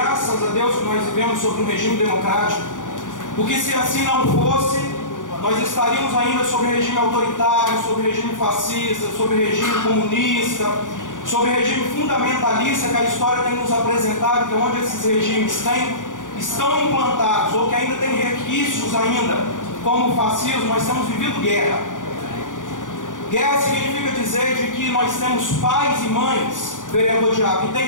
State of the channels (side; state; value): right; late; 0.87 ms